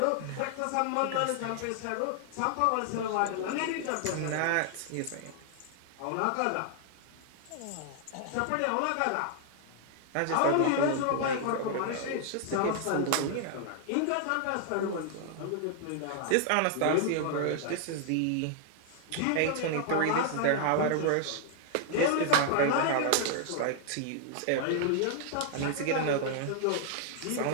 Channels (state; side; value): different; both; correlation 0.00